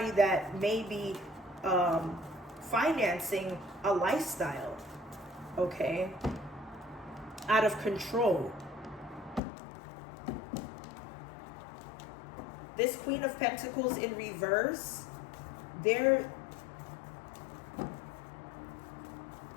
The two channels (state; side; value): drops out; right; at 9.4 s